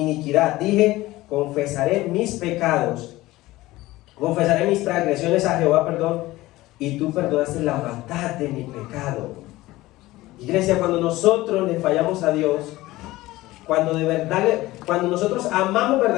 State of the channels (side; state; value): right; quieter; 18.1 dB